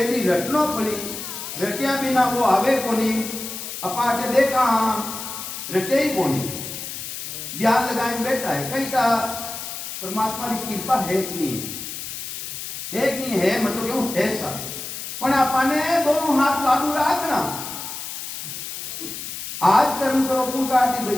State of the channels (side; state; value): left; noise; hiss, 8 dB below the sound